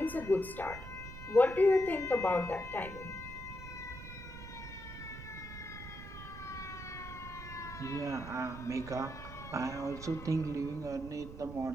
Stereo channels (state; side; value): noise; right; rumble, 12 dB below the sound